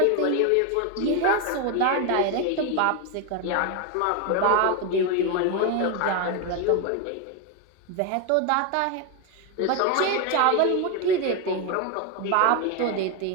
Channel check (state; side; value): different; both; correlation 0.02